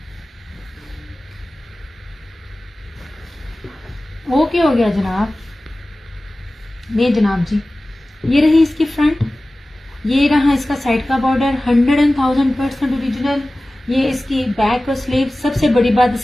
ओके हो गया जनाब। नहीं जनाब जी, ये रही इसकी फ्रंट, ये रहा इसका साइड का बॉर्डर, 100,000% ओरिजिनल। ये इसकी बैक और स्लीव। सबसे बड़ी बात,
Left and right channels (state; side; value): normal; both; correlation 0.97